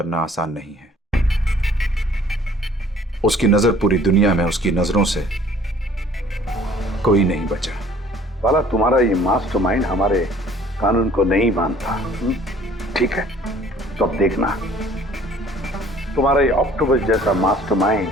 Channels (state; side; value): normal; both; correlation 0.54